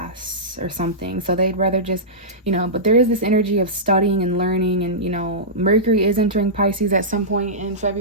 or something, so they'd rather just, you know. But there is this energy of studying and learning, and, you know, Mercury is entering Pisces at some point in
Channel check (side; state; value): both; normal; correlation -0.16